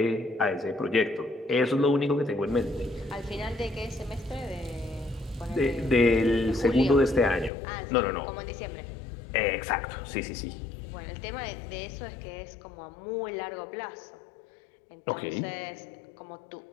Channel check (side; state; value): right; drops out; at 7.5 s